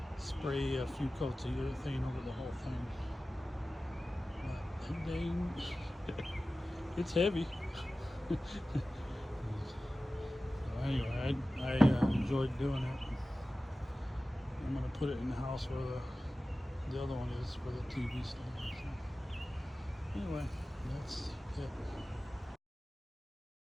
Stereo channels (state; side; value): normal; both; correlation 0.96